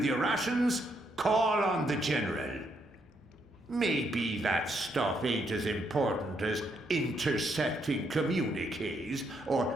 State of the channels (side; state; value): both; normal; correlation 0.76